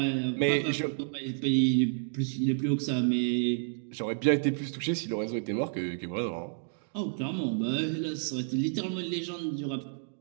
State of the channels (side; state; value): left; silent; digital silence